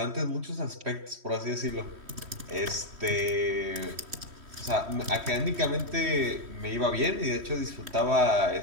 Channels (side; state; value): left; late; 3.1 ms